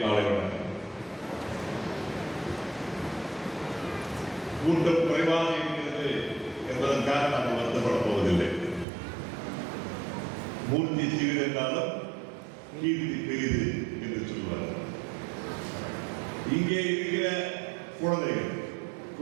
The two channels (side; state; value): left; drops out; at 8.8 s